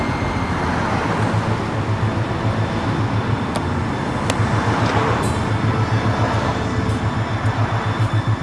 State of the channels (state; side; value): identical; both; correlation 1.00